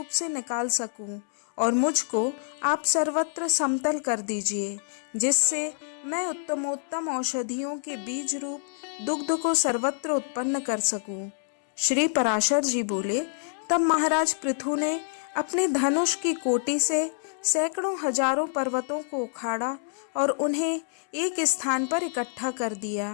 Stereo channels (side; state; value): right; silent; 60 dB below the other